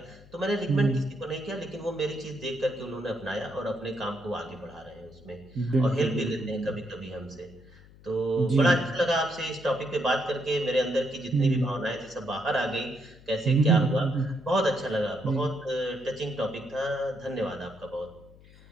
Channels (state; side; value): noise; left; hum, 23 dB below the sound